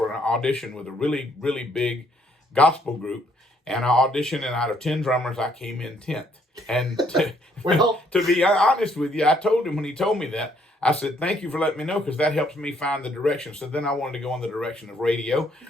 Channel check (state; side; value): normal; both; correlation 0.68